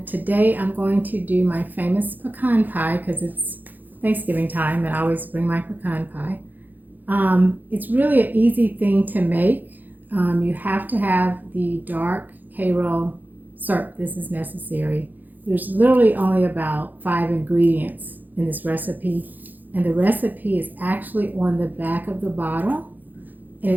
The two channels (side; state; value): left; late; 0.085 ms